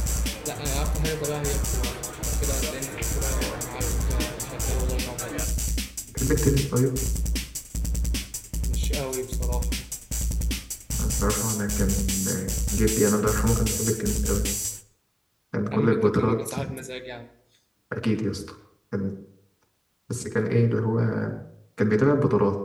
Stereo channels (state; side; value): identical; both; correlation 1.00